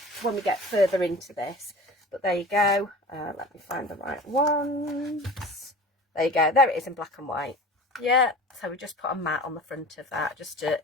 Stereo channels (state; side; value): normal; both; correlation 0.38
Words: when we get further into this. But there you go. Let me find the right ones. There you go. There it is in black and white. Yeah, so we just put a mat on the front of that just to